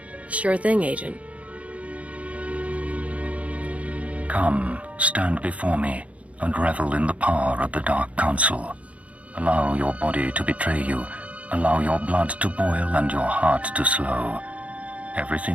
Sure thing, Agent. Come, stand before me, and revel in the power of the Dark Council. Allow your body to betray you. Allow your blood to boil and your heart to slow.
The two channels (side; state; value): left; late; 0.065 ms